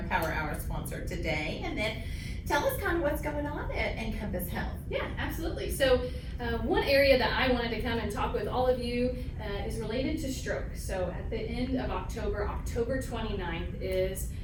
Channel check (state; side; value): identical; both; correlation 1.00